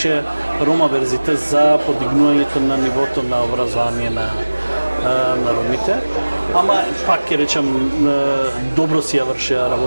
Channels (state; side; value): inverted; both; correlation -1.00